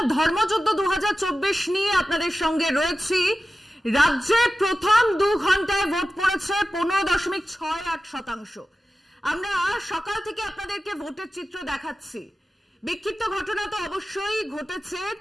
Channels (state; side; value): normal; both; correlation 0.94